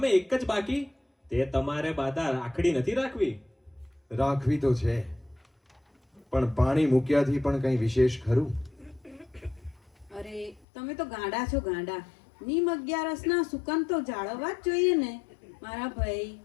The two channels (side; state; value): right; drops out; at 10.7 s